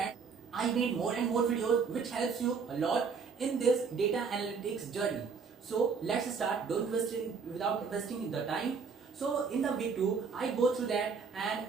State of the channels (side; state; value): left; quieter; 5.6 dB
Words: I made more and more videos which helps you a lot in this data analytics journey. So let's start. Don't waste it without wasting the time. So in the week 2, I go through that and